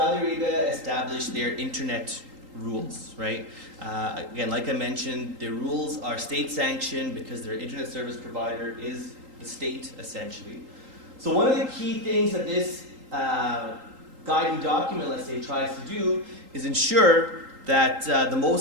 Arabia established their internet rules, right? Again, like I mentioned, their rules are state-sanctioned because their internet service provider is the state, essentially. So one of the key things that this guiding document, let's say, tries to do is ensure that the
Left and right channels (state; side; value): late; left; 3.8 ms